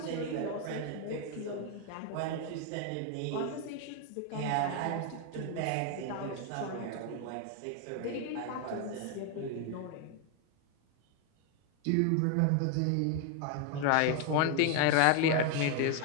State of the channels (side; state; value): both; different; correlation 0.01